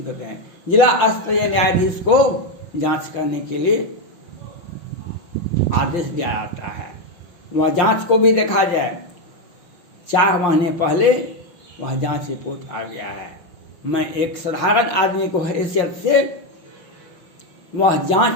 करते हैं। जिला स्तरीय न्यायाधीश को जांच करने के लिए आदेश दिया जाता है। वह जांच को भी देखा जाए, 4 महीने पहले वह जांच रिपोर्ट आ गया है। मैं एक साधारण आदमी को हैसियत से वह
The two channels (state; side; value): late; right; 5.7 ms